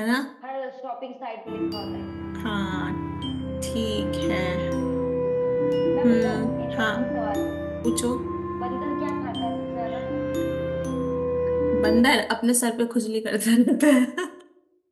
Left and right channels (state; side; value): identical; both; correlation 1.00